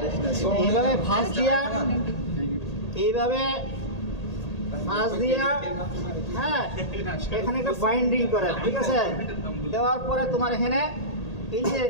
এইভাবে ফাঁস দিয়া এইভাবে ফাঁস দিয়া হ্যাঁ এখানে একটা বাইন্ডিং করে, ঠিক আছে? দেওয়ার পরে তোমার এখানে এই যে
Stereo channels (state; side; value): late; right; 1.8 ms